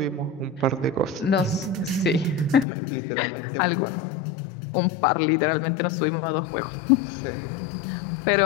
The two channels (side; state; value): right; drops out; at 2.7 s